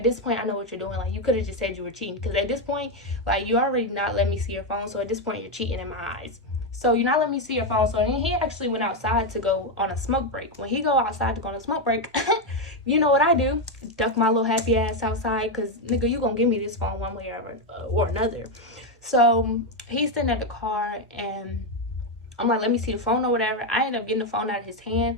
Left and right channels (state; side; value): normal; both; correlation 0.06